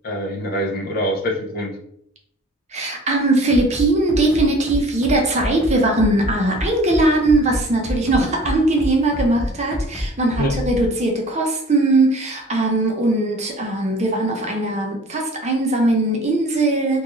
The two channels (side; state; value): both; normal; correlation 0.47